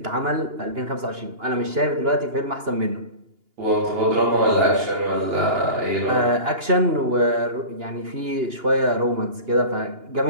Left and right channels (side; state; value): left; late; 2.8 ms